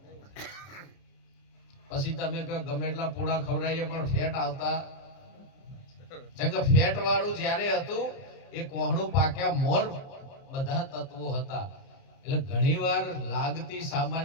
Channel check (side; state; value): right; late; 29 ms